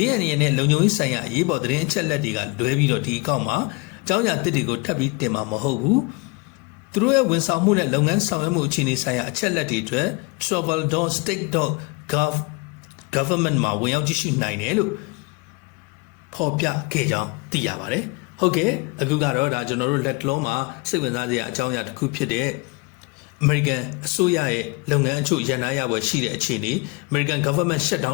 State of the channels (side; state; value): right; quieter; 26.9 dB